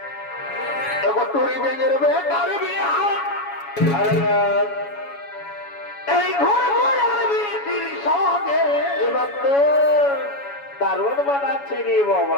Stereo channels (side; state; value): right; late; 7.1 ms